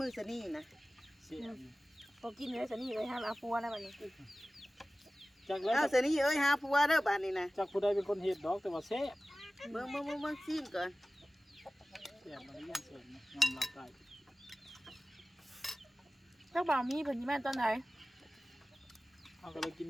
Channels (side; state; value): both; normal; correlation 0.97